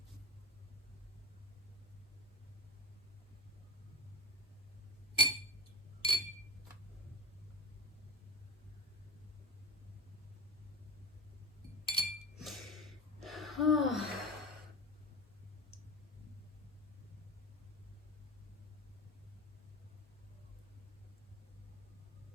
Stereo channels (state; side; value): normal; both; correlation 0.30